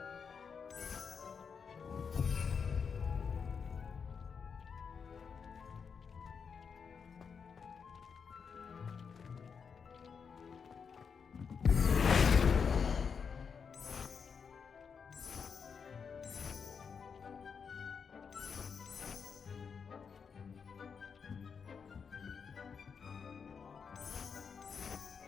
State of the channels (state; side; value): quieter; right; 6.2 dB